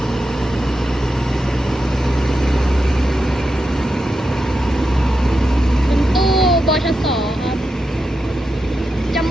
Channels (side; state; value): both; normal; correlation 0.87